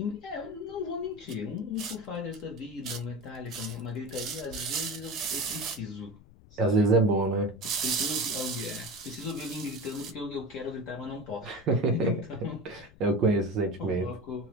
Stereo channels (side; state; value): left; noise; rumble, 22 dB below the sound